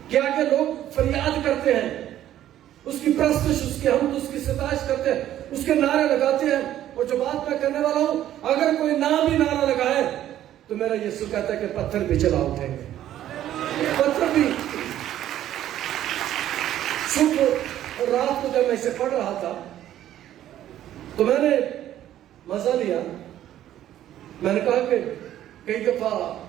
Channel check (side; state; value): left; quieter; 12.2 dB